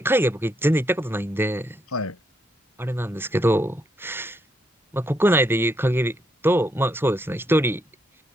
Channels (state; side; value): normal; both; correlation 0.77